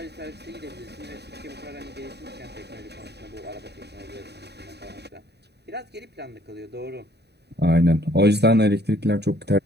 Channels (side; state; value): left; late; 0.48 ms